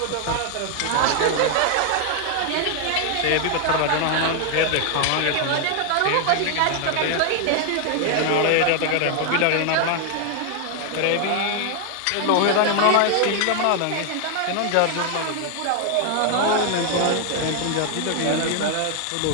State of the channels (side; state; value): both; different; correlation 0.00